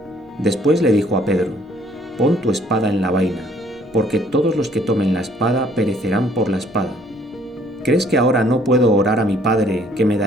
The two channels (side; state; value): both; normal; correlation 0.61